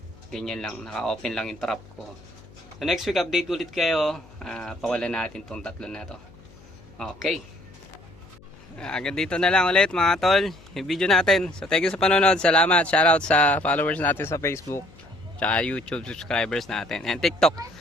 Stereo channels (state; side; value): noise; left; hum, 24 dB below the sound